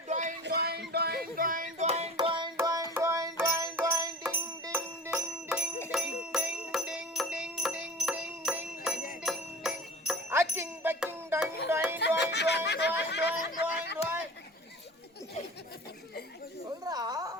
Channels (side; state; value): both; normal; correlation 0.39